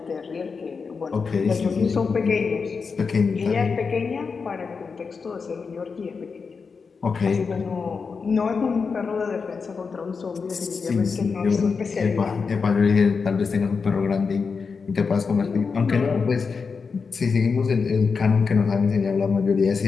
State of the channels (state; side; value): quieter; right; 5.2 dB